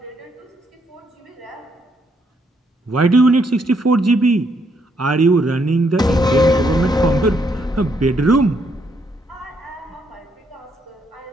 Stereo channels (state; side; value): normal; both; correlation 0.73